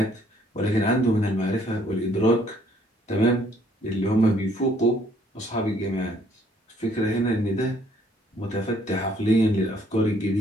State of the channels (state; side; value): normal; both; correlation 0.64